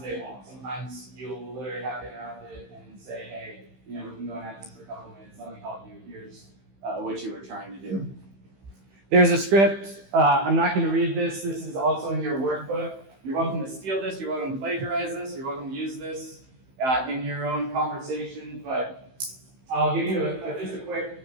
they won't. Sometimes you'll literally have to interrupt it and say, hey, we can go and have this for a couple minutes, let me help you, here's what you were trying to do. There's a script. I'm not going to read this. This is also in your workbook. You're welcome to steal this, you're welcome to plagiarize this, you're welcome to use this in your own conversation, but I'll give you just a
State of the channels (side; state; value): left; late; 15 ms